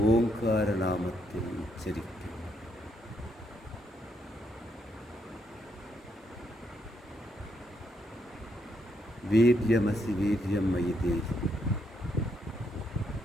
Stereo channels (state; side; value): normal; both; correlation 0.76